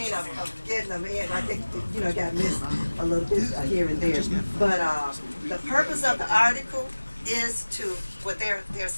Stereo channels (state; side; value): inverted; both; correlation -1.00